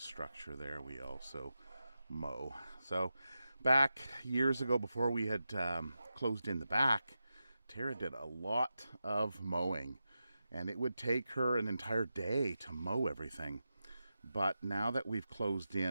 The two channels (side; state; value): both; inverted; correlation -0.90